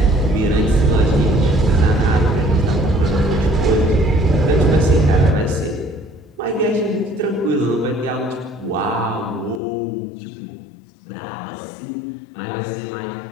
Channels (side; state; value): right; drops out; at 9.6 s